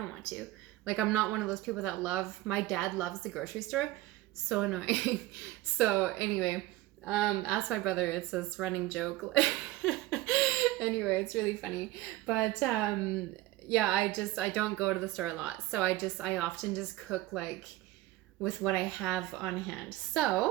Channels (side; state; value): left; quieter; 17.1 dB